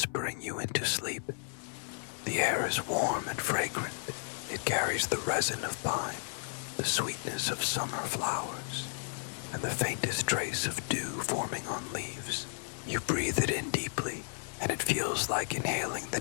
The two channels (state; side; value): silent; right; digital silence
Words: you into sleep. The air is warm and fragrant. It carries the resin of pine, the sweetness of summer flowers, and the faintest trace of dew forming on leaves. You breathe it in deeply, and it feels like inhaling the